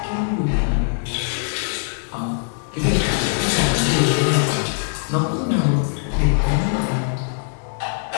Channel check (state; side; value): silent; right; digital silence